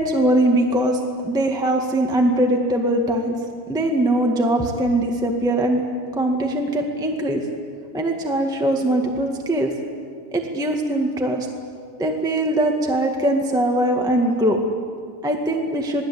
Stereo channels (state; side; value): normal; both; correlation 0.49